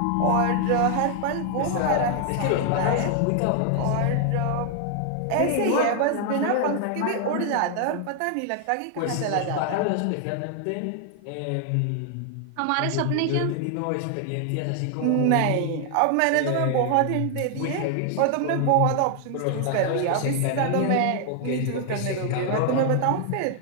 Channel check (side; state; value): both; different; correlation 0.00